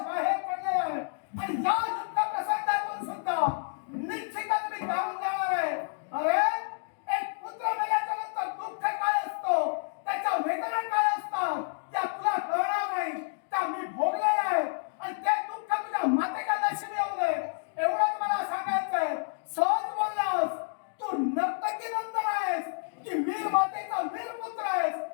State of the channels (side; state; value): right; silent; digital silence